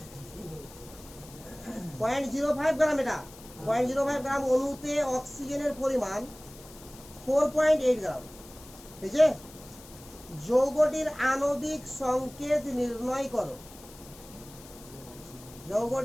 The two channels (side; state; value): left; noise; hiss, 20 dB below the sound